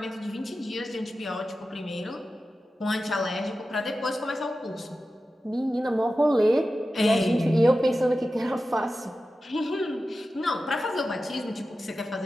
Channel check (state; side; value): normal; both; correlation 0.93